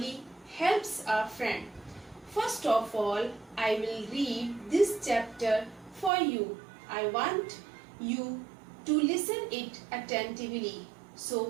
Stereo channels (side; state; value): left; drops out; at 6.1 s